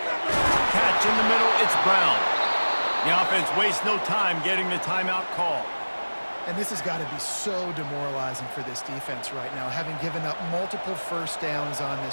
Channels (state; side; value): inverted; both; correlation -1.00